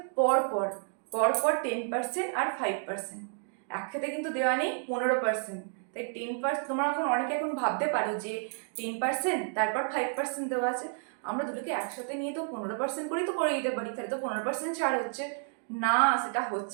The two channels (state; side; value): silent; left; 57 dB below the other